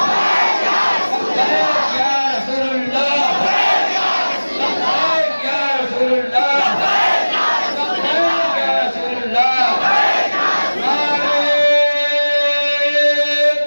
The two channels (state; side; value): inverted; both; correlation -1.00